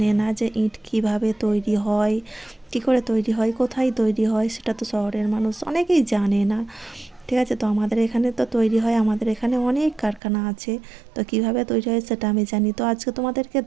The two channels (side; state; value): left; drops out; at 10.2 s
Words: না যে ইট কিভাবে তৈরি হয়, কী করে তৈরি হয়, কোথায় তৈরি হয়, সেটা তো শহরের মানুষ অনেকেই জানে না। ঠিক আছে, তো আমাদের এখানে তো তৈরি হয়, আমাদের এখানে অনেক কারখানা আছে। তো কিভাবে তৈরি হয় সেটা আমি জানি, তো আজকে তোমাদেরকে